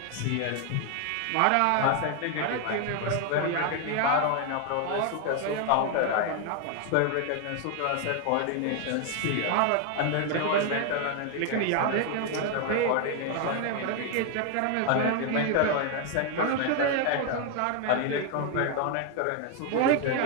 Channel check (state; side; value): different; both; correlation 0.01